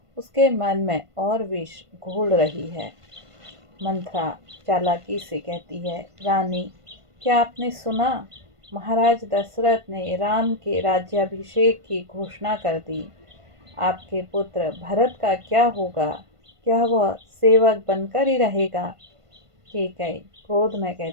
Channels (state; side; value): late; left; 1.5 ms